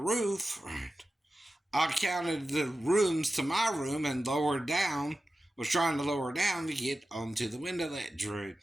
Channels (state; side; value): normal; both; correlation 0.94